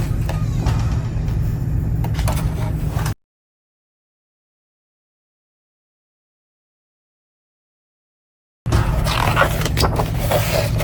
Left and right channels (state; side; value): identical; both; correlation 1.00